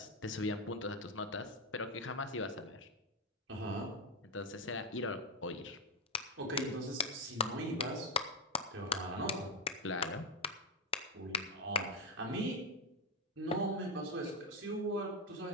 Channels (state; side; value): normal; both; correlation 0.07